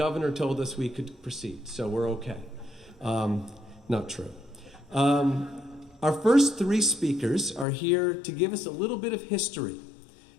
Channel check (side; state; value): right; drops out; at 7.7 s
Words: told us we could proceed, so we're okay. Not true. Our first three speakers are here to give us a little bit of history.